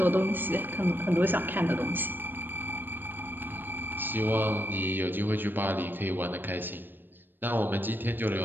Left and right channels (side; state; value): left; late; 0.094 ms